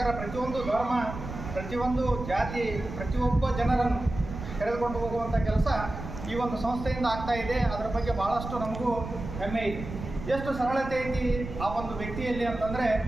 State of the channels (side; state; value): right; noise; rumble, 9 dB below the sound